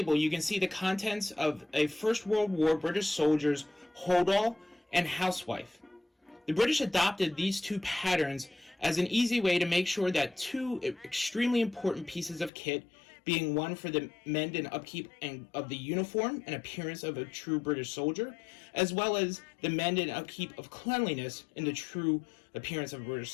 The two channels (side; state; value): right; drops out; at 12.5 s